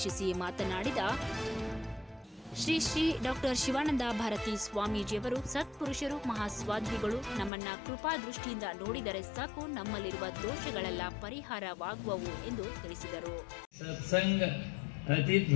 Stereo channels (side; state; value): right; drops out; at 7.5 s